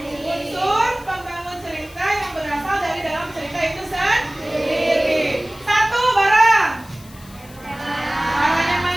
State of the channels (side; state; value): left; noise; hiss, 22 dB below the sound